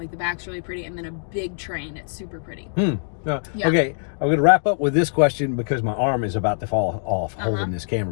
the back's really pretty, and then a big train. It's super pretty. Yeah. Yeah. Okay, I'm going to wrap up with this question because my arm is about to fall off holding this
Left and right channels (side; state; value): right; silent; digital silence